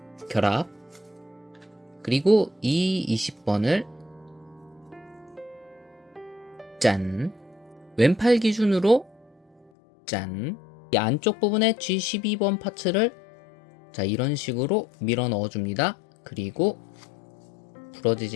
결합 그리고 이 20번을 짠 왼팔 기준으로 짠 이 안쪽 부분에 G12번 파츠를 자 이런 식으로 밀어 넣어줍니다. 그리고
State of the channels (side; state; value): right; drops out; at 9.7 s